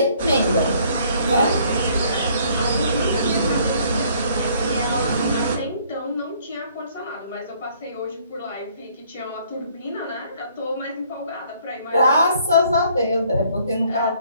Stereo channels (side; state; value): both; inverted; correlation -0.61